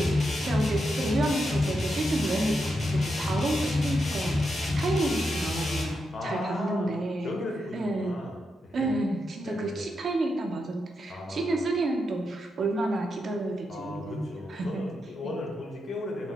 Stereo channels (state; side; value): normal; both; correlation 0.85